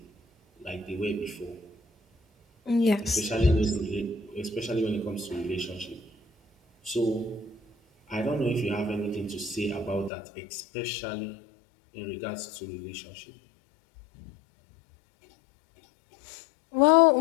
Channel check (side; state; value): right; drops out; at 10.1 s